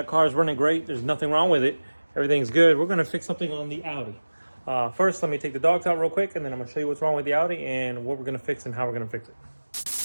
car is running great. There's nothing wrong with it. Everything's good. We're going to fix something on the Audi. First, let me take the dogs out real quick, and then I'm going to show you what's wrong with the Audi and what we're going to fix and how we're going to fix it.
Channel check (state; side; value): inverted; both; correlation -1.00